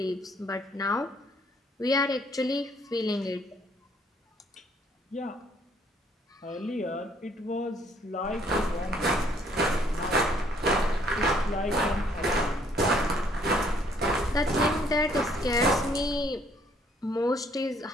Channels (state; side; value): normal; both; correlation 0.64